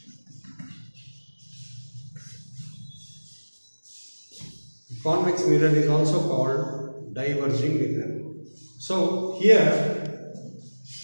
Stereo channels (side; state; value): both; inverted; correlation -1.00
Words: Convex mirror is also called diverging mirror. So here